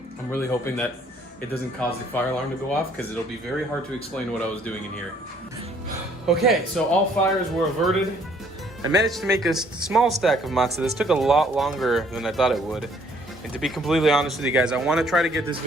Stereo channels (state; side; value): normal; both; correlation 0.62